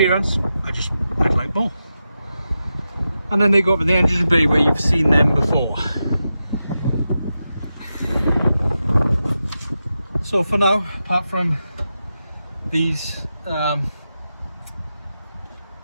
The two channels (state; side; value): inverted; both; correlation -0.90